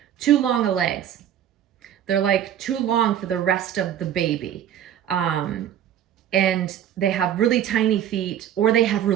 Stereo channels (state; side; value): quieter; left; 10.3 dB